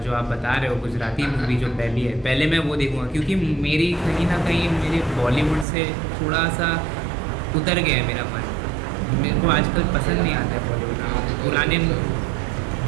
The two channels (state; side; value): drops out; left; at 5.7 s